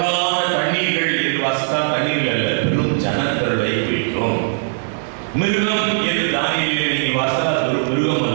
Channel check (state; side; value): silent; left; digital silence